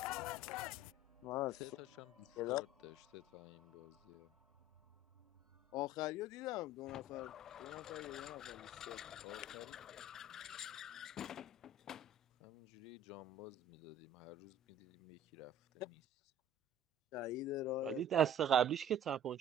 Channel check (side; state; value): both; normal; correlation 0.47